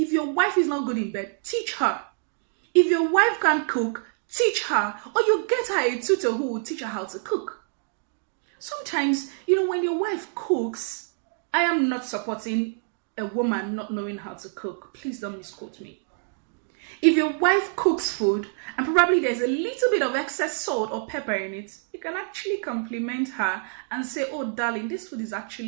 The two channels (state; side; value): silent; left; 61 dB below the other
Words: your wife is not good in bed, teach her. If your wife can't cook, teach her. Or you get her a tutor who will teach her how to cook. Sometimes, when your wife cooks, I am not supporting a woman not knowing how to cook. Please don't misquote me. If your wife cooks food and probably there's a little bit of excess salt or pepper in it, you can actually compliment her and say, oh darling, this food is